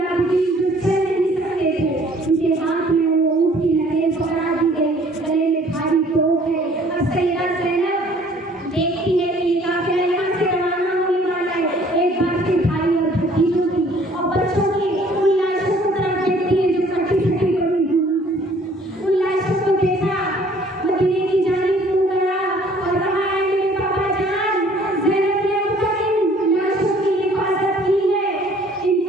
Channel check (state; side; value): normal; both; correlation 0.57